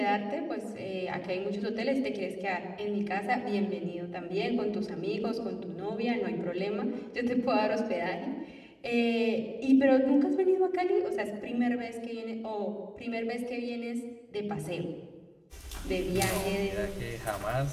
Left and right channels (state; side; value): identical; both; correlation 1.00